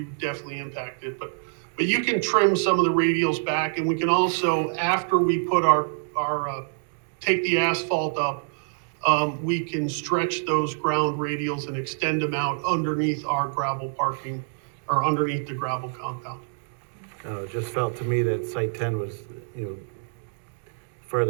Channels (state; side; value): silent; left; digital silence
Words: definitely impact it. But you can trim some of the radials back, and we can also, after we put take the asphalt up, we can stretch those ground radials and extend them out underneath our gravel parking, or underneath the gravel compound. it just felt to me that site 10 was,